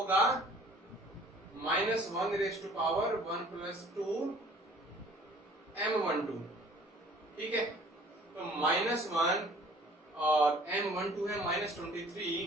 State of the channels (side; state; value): both; normal; correlation 0.52